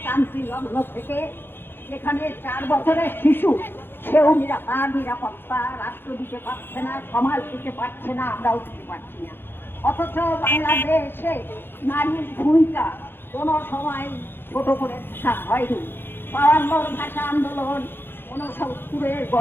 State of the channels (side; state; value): right; late; 0.10 ms